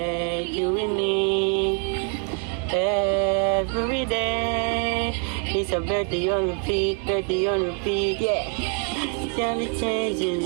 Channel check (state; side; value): quieter; left; 39.1 dB